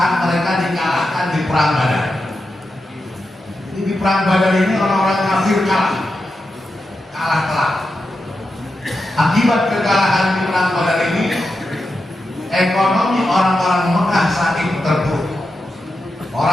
mereka dikalahkan di perang Badar. Jadi di perang Badar ini orang-orang kafir kalah telak. Akibat kekalahan di perang Badar ini, ekonomi orang-orang Mekah saat itu terpuruk.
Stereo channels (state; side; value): normal; both; correlation 0.89